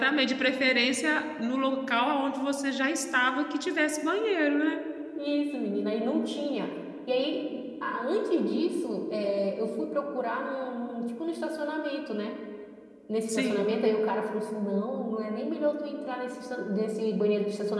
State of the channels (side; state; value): both; identical; correlation 1.00